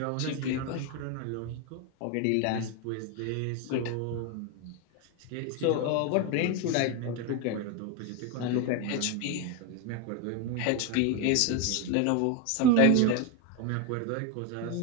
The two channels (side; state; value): both; different; correlation 0.02